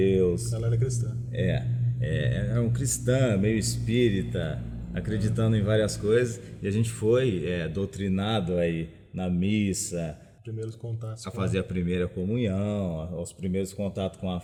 Ela era cristã. Era um cristã, meio espírita, acreditando em várias coisas, e a gente foi doutrinado aí na missa, primeiros contatos a fazer a primeira comunhão, os primeiros contatos com a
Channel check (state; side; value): identical; both; correlation 1.00